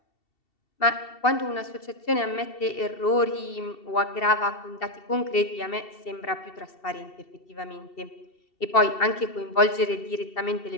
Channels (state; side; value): late; right; 2.7 ms